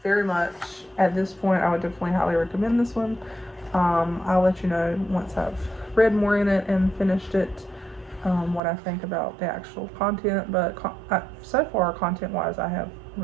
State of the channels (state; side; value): drops out; left; at 8.6 s